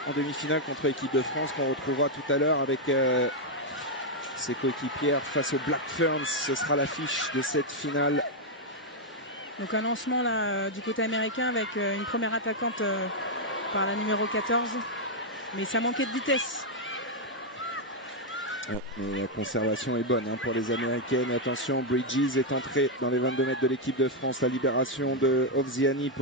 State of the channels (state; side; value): normal; both; correlation -0.01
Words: en demi-finale contre l'équipe de France, qu'on retrouvera tout à l'heure avec ses coéquipières face aux Black Ferns. Ce sera l'affiche de cette finale. Donc un lancement là, du côté américain avec une première attaquante par la numéro 14. Mais ça manquait de vitesse. Ouais, mais la conservation est bonne pour les Américaines. Attention, Bridges est entré dans les 22 mètres de l'équipe de France. La libération de Ovziani